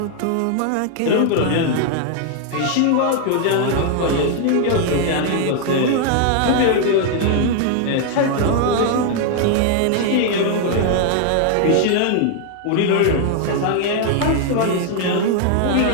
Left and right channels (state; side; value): different; both; correlation 0.00